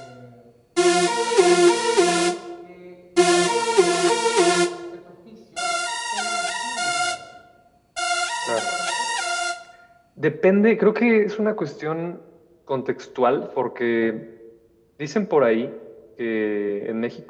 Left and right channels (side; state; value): both; identical; correlation 1.00